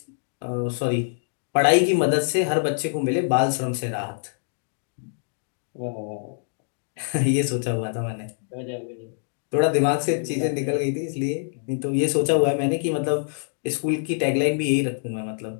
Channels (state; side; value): silent; right; digital silence